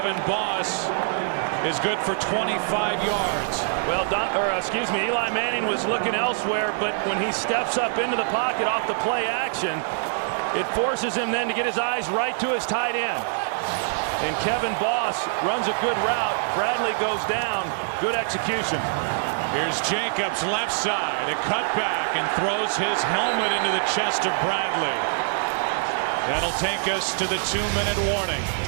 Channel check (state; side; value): silent; left; digital silence